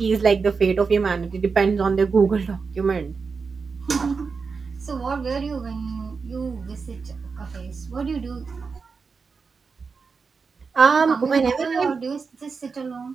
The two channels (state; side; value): quieter; left; 5.0 dB